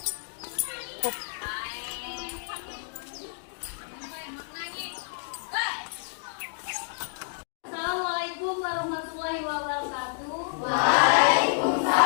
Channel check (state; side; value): silent; right; digital silence